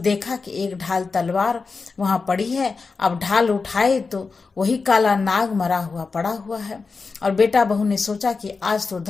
कि एक ढाल तलवार वहां पड़ी है। अब ढाल उठाए तो वही काला नाग मरा हुआ पड़ा हुआ है। और बेटा बहू ने सोचा कि आज तो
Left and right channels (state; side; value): quieter; right; 4.5 dB